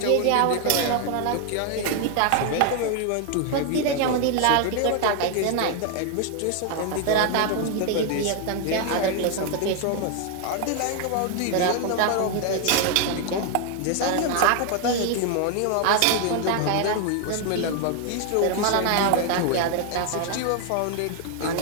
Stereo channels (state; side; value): different; both; correlation 0.00